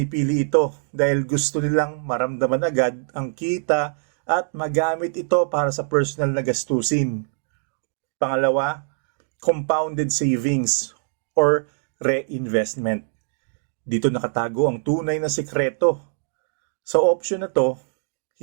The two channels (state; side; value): silent; left; digital silence